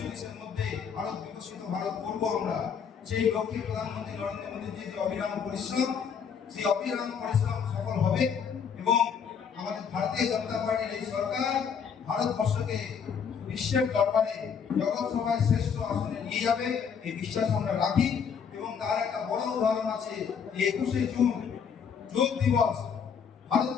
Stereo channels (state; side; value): quieter; right; 6.9 dB